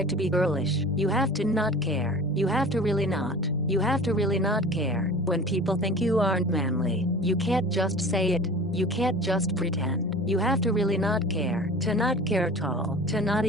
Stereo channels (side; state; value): both; normal; correlation 0.39